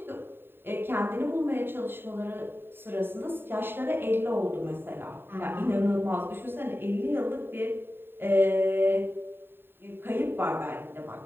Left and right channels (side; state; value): left; late; 0.10 ms